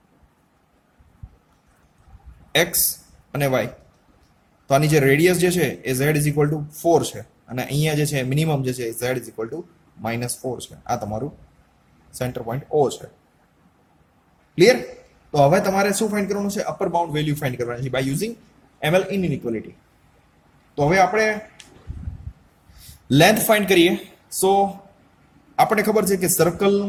x અને y. તો આની જે રેડિયસ જે છે એ z is equal to 4 છે અને અહીંયા જે છે મિનિમમ જે છે z is equal to -4 છે. આ તમારું સેન્ટર પોઈન્ટ O છે. ક્લિયર? તો હવે તમારે શું ફાઇન્ડ કરવાનું છે? અપર બાઉન્ડ વેલ્યુ ફાઇન્ડ કરવાની છે બાય યુઝિંગ ml ઇનઇક્વાલિટી. તો હવે આપણે લેન્થ ફાઇન્ડ કરીએ. સો આપણને ખબર છે કે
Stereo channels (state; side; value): identical; both; correlation 1.00